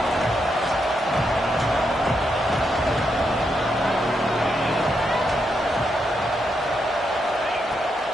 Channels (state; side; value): normal; both; correlation 0.81